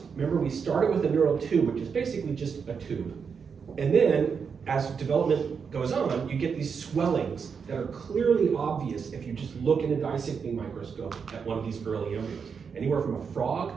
Remember, we started with a neural tube, which is basically just a tube. And then, as development goes on, you get these swellings that are clearly obvious if you just look in a dissecting microscope at one of these early embryos. Anywhere from a frog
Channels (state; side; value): quieter; left; 6.2 dB